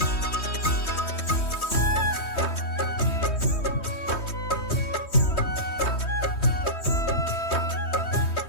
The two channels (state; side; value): late; right; 3.2 ms